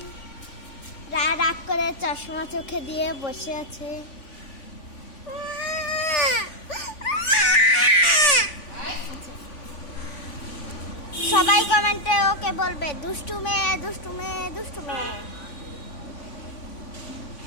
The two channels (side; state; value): right; late; 3.5 ms